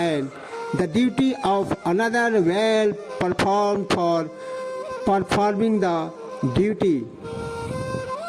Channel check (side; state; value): both; identical; correlation 1.00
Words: the duty of another well performed for performing the duty